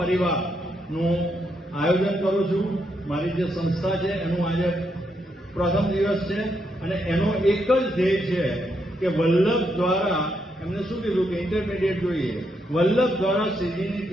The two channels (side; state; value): both; normal; correlation 0.79